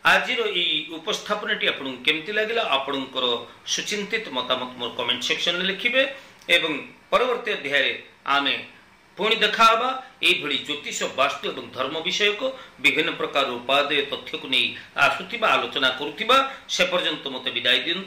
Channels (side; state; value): both; identical; correlation 1.00